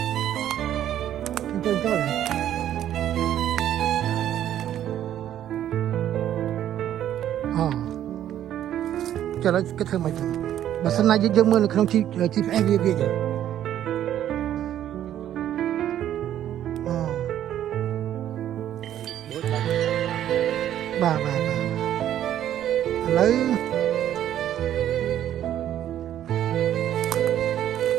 ចូលអូចូលហើយគេធ្វើមកចឹងបើសិនណាយើងមើលនៅក្នុង GPS វាចឹងបាទឥឡូវ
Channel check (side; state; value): left; quieter; 11.3 dB